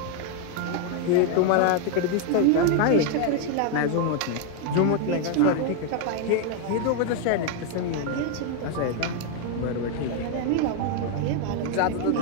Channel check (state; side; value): different; both; correlation 0.00